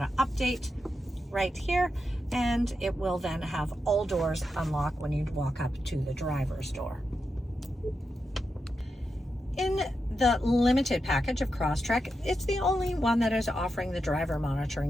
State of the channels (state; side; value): normal; both; correlation 0.87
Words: to update right here, and it will then have all doors unlock when you walk up to the driver's door. In the limited package of Crosstrek, it's the only one that is offering the driver